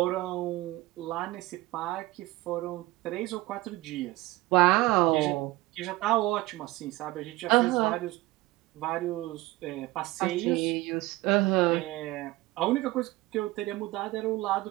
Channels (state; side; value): quieter; left; 19.2 dB